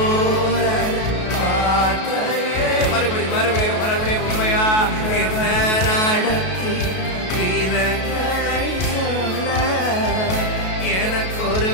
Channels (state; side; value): late; right; 33 ms